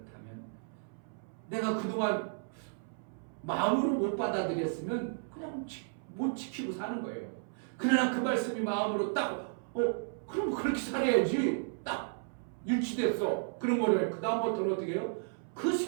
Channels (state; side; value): silent; left; 55 dB below the other